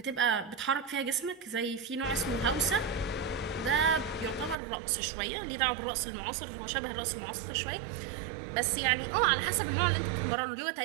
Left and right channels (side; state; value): left; drops out; at 4.5 s